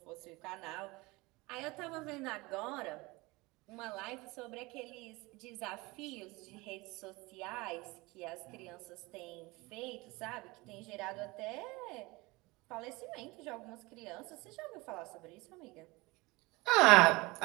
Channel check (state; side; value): quieter; left; 23.1 dB